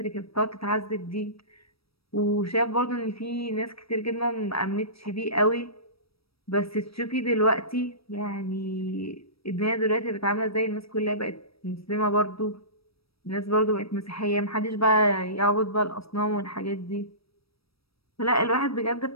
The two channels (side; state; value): right; late; 0.76 ms